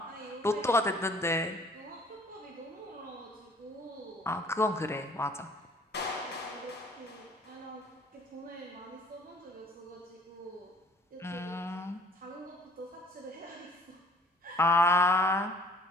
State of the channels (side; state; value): both; normal; correlation 0.54